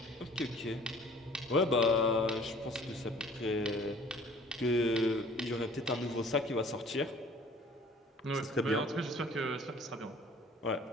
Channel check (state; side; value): normal; both; correlation 0.51